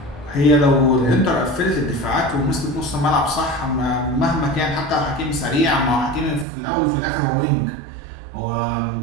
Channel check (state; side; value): drops out; left; at 6.5 s